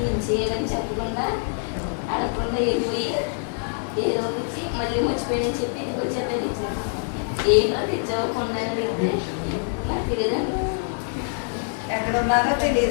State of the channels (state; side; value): silent; right; 62 dB below the other